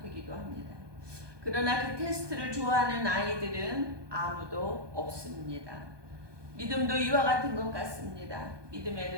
되기도 합니다. 그러나 그 테스트를 좋아하는 아이들은 아무도 없습니다. 믿음도 이와 같은 것 같습니다.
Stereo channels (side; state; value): left; late; 1.2 ms